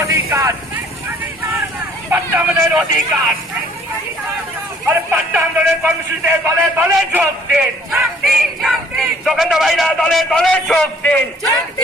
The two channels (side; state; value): both; normal; correlation 0.58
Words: অধিকার, পাট্টা আমাদের অধিকার। আর পাট্টা আন্দোলনের কর্মসূচিতে দলে দলে যোগ দিন, যোগেন্দ্র ভাইরা দলে দলে যোগ দিন,